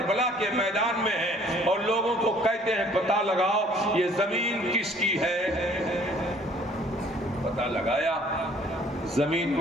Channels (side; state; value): both; normal; correlation 0.57